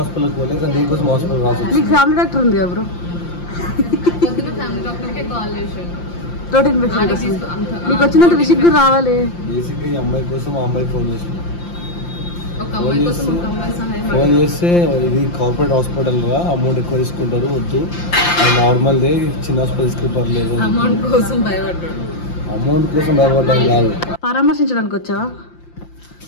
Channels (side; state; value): right; late; 5.8 ms